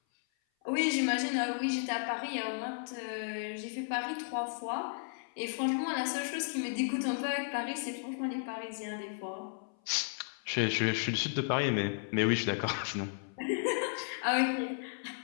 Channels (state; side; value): silent; right; 55 dB below the other